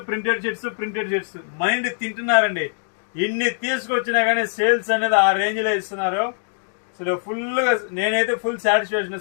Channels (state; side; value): silent; right; digital silence